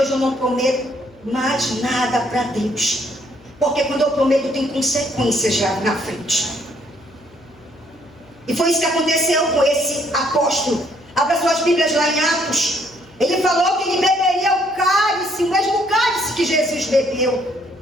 eu não prometo mais nada para Deus. Porque quando eu prometo tem consequências já na frente. E foi isso que aconteceu com esse apóstolo. Abra suas Bíblias lá em Atos. Ele falou que ele beberia o cálice, o mesmo cálice que Jesus bebeu.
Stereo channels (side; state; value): left; noise; hum, 27 dB below the sound